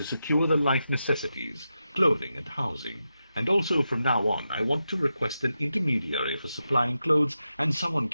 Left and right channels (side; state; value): both; inverted; correlation -0.89